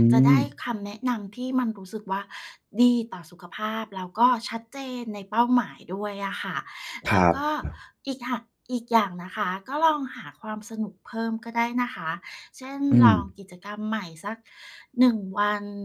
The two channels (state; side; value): identical; both; correlation 1.00